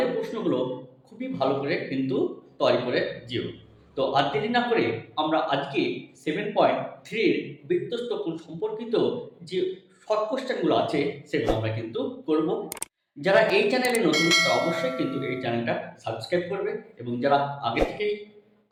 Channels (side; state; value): both; identical; correlation 1.00